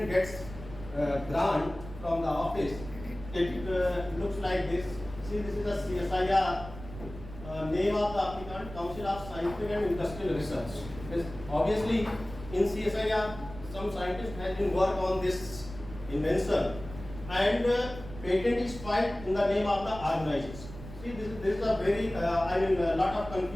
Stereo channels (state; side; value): noise; right; rumble, 13 dB below the sound